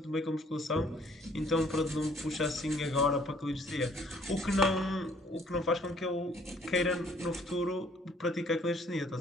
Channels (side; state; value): both; normal; correlation 0.61